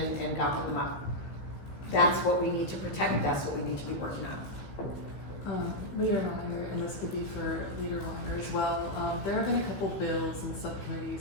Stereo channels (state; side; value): late; right; 15 ms